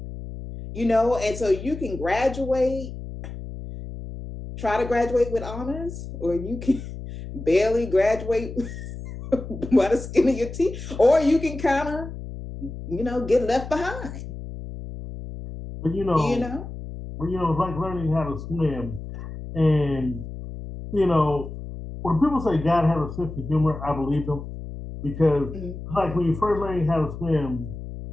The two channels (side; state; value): left; noise; hum, 10 dB below the sound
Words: and so you can graduate, try to graduate with honors, or you can barely graduate by the skin of your teeth, or you can kind of, get left behind. But it's like learning how to swim. And, when people say God has a sense of humor, I believe them. Because, like, when you first learn how to swim,